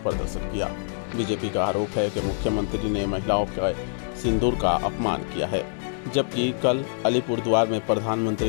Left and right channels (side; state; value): right; silent; digital silence